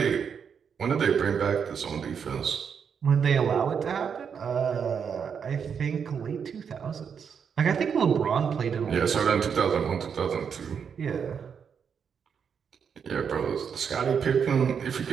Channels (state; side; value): quieter; left; 7.0 dB